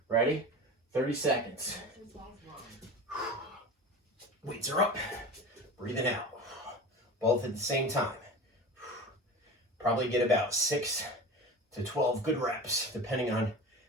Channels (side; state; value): both; normal; correlation 0.33